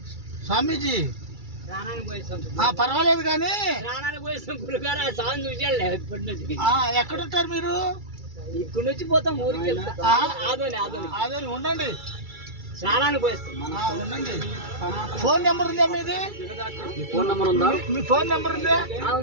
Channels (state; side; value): late; left; 2.3 ms